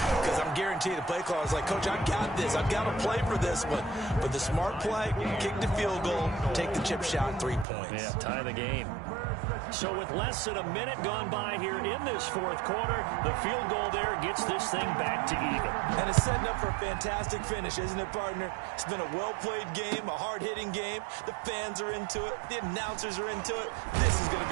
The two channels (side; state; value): left; drops out; at 7.7 s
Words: Because I'm guaranteed the play caller is like, Coach, I've got this. I've got to play for this one. But the smart play, kick the field goal, take the chip shot, 3 points. Yeah, tie the game. So with less than a minute gone by here in this 4th quarter, the field goal there gets this thing back to even. And it's setting up for a fantastic finish, isn't it, partner? It's been a well-played game, a hard-hitting game. The fans are into it. The announcers are into it. This is going to